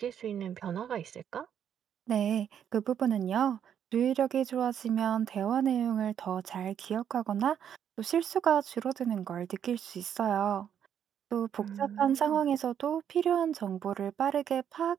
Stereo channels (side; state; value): left; quieter; 8.9 dB